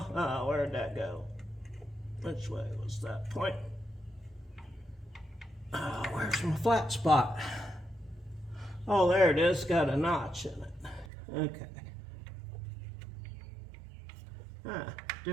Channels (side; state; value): left; drops out; at 11.1 s